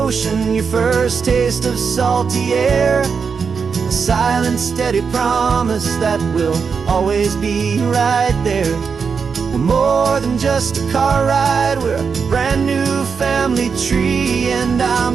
your first taste of salty air. A silent, steady promise that we'll always be right there. We're more than just a car ride, we're a brand new family tree. And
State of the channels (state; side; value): quieter; left; 5.8 dB